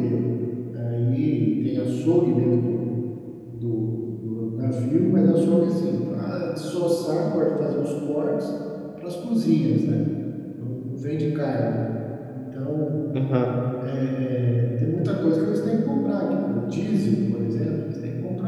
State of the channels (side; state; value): both; identical; correlation 1.00